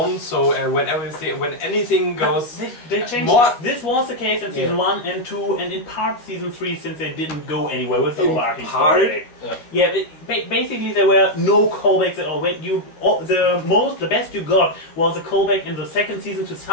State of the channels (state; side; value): late; right; 12 ms